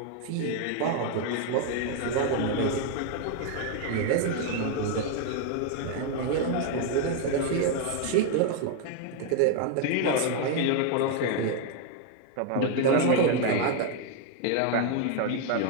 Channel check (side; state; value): both; different; correlation 0.01